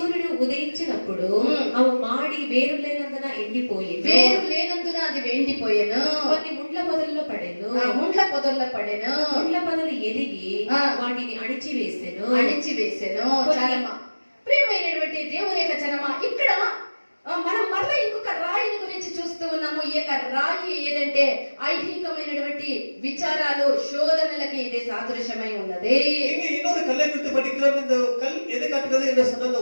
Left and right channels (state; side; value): inverted; both; correlation -1.00